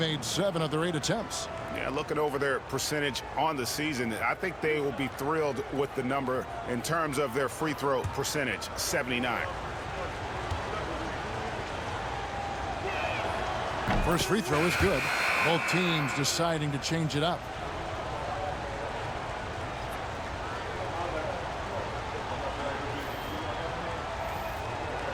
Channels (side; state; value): both; identical; correlation 1.00